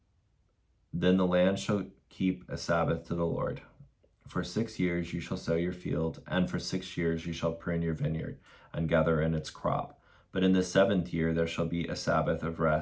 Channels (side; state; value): both; identical; correlation 1.00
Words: then the land shall keep a Sabbath to the Lord. For 6 years you shall sow your field, and for 6 years you shall prune your vineyard, and gather in its crop. But in the 7th year there shall be a Sabbath of